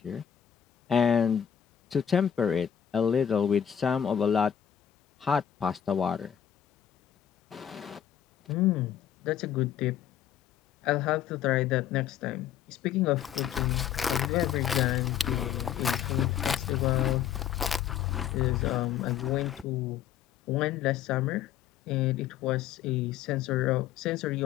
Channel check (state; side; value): quieter; right; 9.5 dB